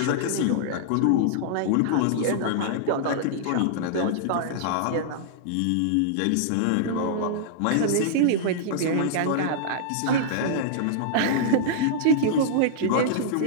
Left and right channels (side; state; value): both; different; correlation -0.02